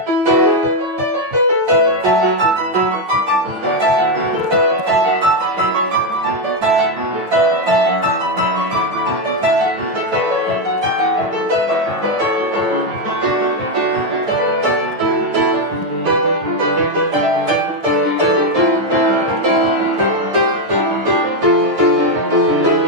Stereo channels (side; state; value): left; late; 9.1 ms